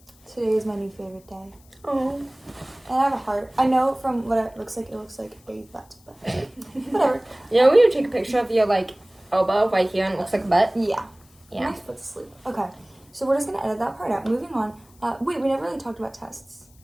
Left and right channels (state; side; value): noise; left; hiss, 29 dB below the sound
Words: Today is my new favorite day. Oh. And I have a heart. I know from what it looks like a butt, but whatever. Yeah, we would take a picture of your, like, elbow right here and it looks like a butt. Yeah. Yeah. My foot's asleep. Okay. So we're just going to edit that part out. Moving on. Wait, we never really talked about tests.